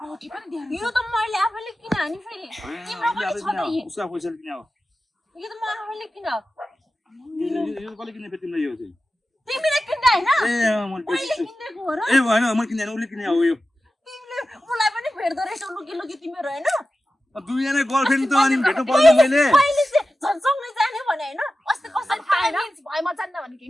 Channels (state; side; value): normal; both; correlation 0.94